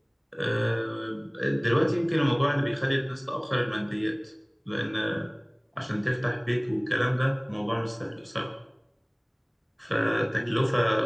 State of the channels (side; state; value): both; identical; correlation 1.00